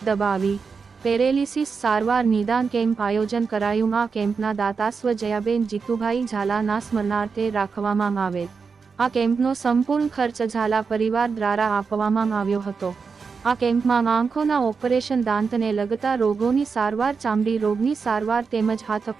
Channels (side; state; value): left; quieter; 5.3 dB